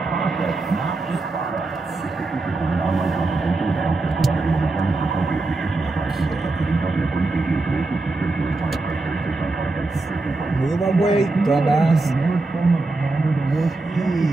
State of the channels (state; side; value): quieter; left; 3.3 dB